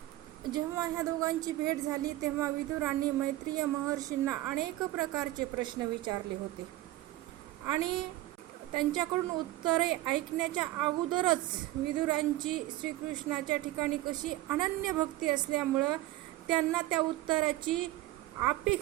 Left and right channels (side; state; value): left; quieter; 16.6 dB